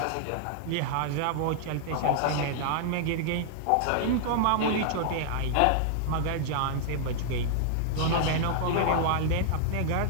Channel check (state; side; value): different; both; correlation -0.01